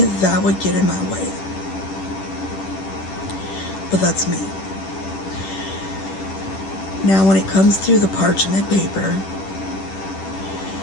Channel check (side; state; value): right; late; 10 ms